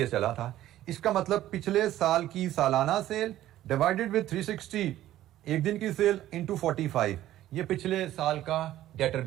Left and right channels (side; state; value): left; quieter; 13.6 dB